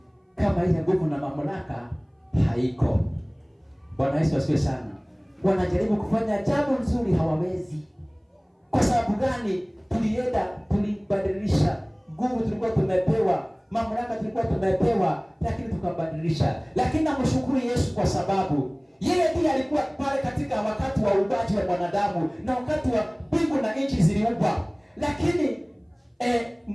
kama ile nguvu na mamlaka haiko. Bwana Yesu asifiwe sana. Wanajaribu kufanya jambo nzuri hawawezi. Kwa sababu gani? Tulibadilisha nguvu tulikuwa tumepewa, mamlaka tulikuwa tumepewa, lakini tukabadilisha. Lakini namshukuru Yesu kwa sababu yeye ndiye alikuwa pale katika wakati wa uumbaji wa mwanadamu na wakati wa mbingu na nchi ziliumbwa. Lakini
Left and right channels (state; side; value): identical; both; correlation 1.00